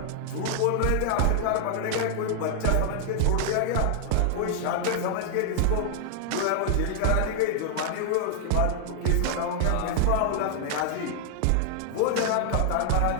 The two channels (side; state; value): both; different; correlation 0.00